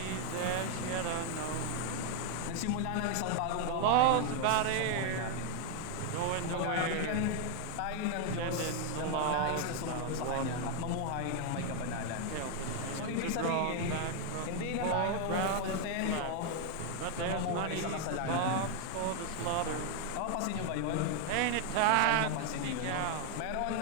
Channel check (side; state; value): both; different; correlation 0.00